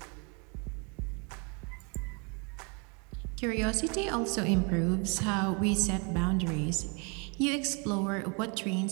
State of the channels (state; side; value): quieter; left; 33.4 dB